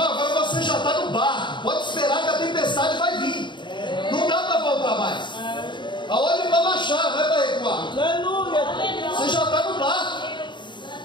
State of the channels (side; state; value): right; late; 0.23 ms